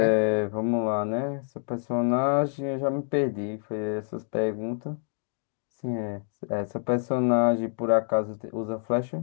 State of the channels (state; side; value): silent; right; digital silence